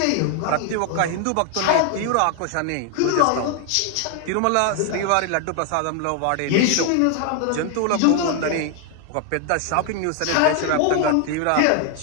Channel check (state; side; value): different; both; correlation 0.00